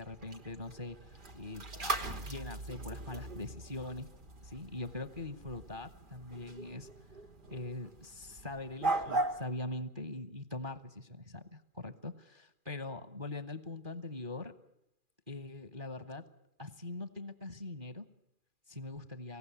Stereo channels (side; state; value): left; late; 2.4 ms